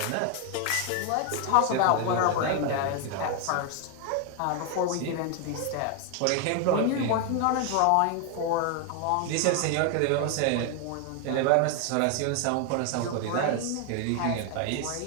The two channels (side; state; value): both; different; correlation 0.01